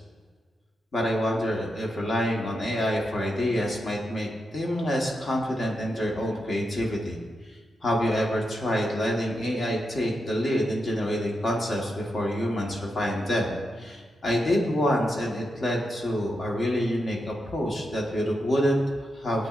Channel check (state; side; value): normal; both; correlation 0.86